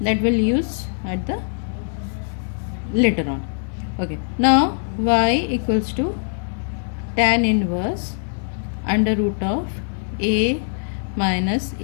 That will use at the later on. Okay, now y equals to tan inverse under root of a minus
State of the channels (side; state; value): right; silent; digital silence